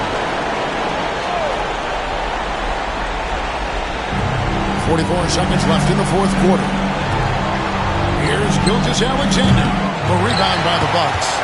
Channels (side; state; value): both; identical; correlation 1.00